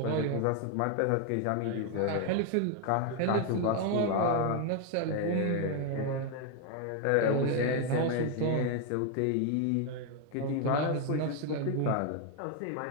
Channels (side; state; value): both; different; correlation 0.01